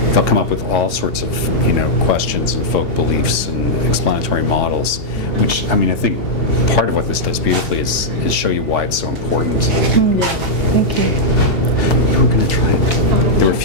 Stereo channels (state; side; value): late; right; 2.8 ms